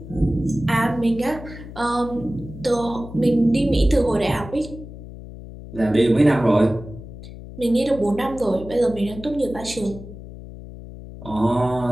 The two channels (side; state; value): left; noise; hum, 14 dB below the sound